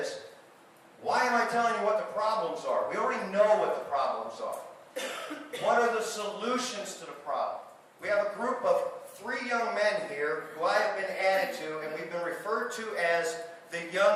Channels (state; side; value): identical; both; correlation 1.00